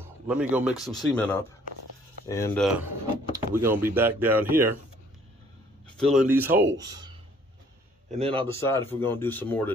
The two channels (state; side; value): normal; both; correlation 0.60